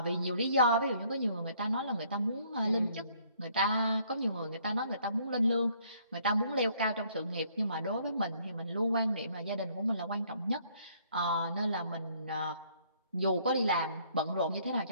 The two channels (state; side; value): inverted; both; correlation -0.64